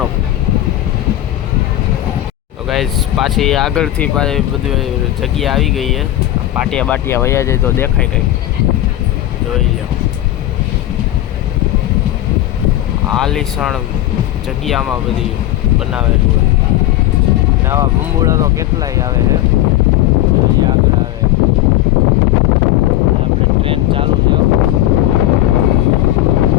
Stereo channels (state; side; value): quieter; right; 14.2 dB